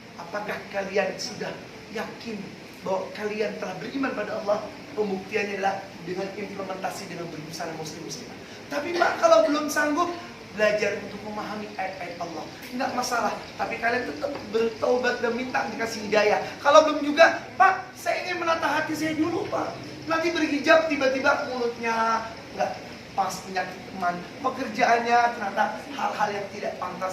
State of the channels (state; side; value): identical; both; correlation 1.00